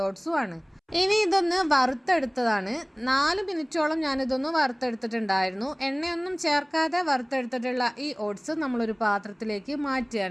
ഓട്സും ആണ്. ഇനി ഇതൊന്ന് വറുത്തെടുത്തതാണ്. 4 മിനിറ്റോളം ഞാനിതൊന്ന് വറുത്തെടുത്തിട്ടുണ്ടായിരുന്നു. എണ്ണയൊന്നും ചേർക്കാതെ വറുത്തെടുത്തിട്ടുള്ള ഈ ഓട്സ് നമ്മളൊരു പാത്രത്തിലേക്ക്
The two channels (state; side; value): identical; both; correlation 1.00